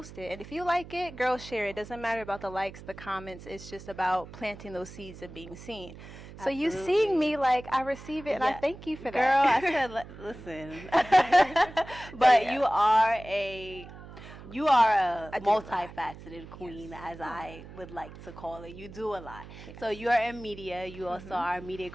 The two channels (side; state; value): right; noise; hum, 16 dB below the sound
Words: it. And if you like it, girl, share it. It doesn't matter about the likes, the comments. It's just about planting those seeds and being seen. So you seeing me, like, I receive it, and I thank you for that. Girl, I said, listen. But you are a You are a multifaceted queen, as I would like to call it. You do a lot. Yes. So you are in media. You also are media